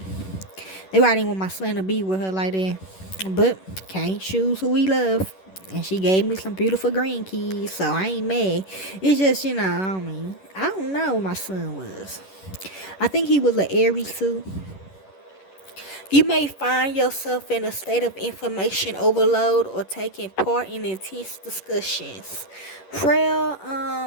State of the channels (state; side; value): late; right; 11 ms